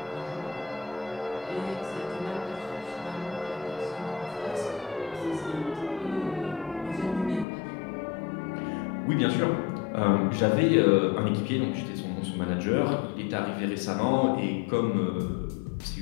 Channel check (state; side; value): drops out; right; at 7.5 s